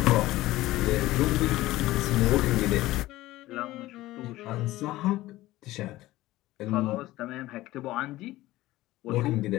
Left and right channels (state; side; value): quieter; right; 17.1 dB